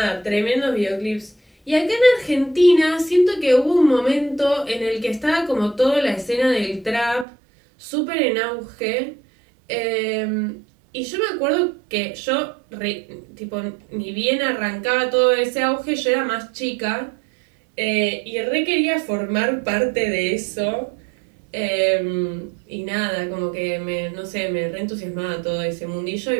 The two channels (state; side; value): drops out; left; at 7.2 s